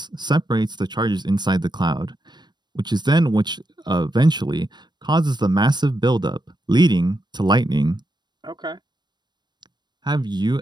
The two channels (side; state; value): left; late; 0.21 ms